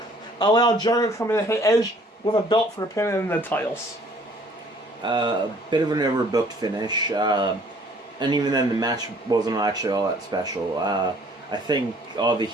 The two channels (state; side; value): normal; both; correlation 0.57